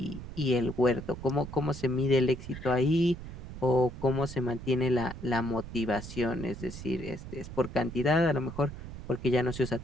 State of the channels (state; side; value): noise; right; rumble, 11 dB below the sound